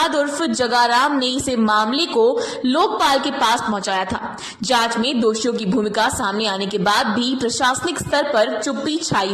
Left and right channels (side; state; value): both; identical; correlation 1.00